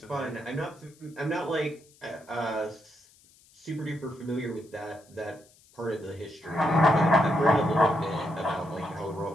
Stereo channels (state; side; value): noise; left; hiss, 28 dB below the sound